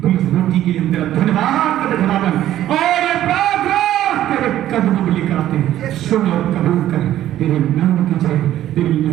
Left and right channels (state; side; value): quieter; left; 12.8 dB